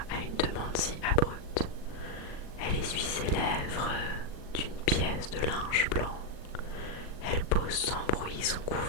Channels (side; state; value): right; late; 39 ms